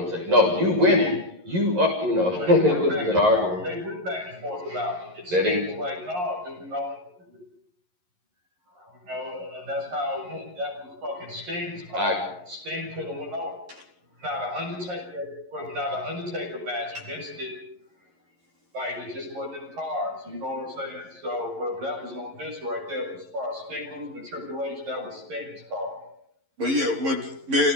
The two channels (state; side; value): late; left; 11 ms